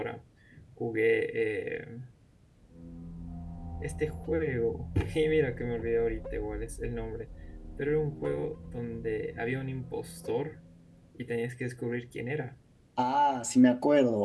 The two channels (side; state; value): both; identical; correlation 1.00